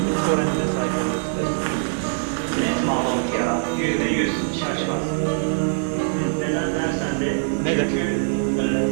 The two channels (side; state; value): left; silent; digital silence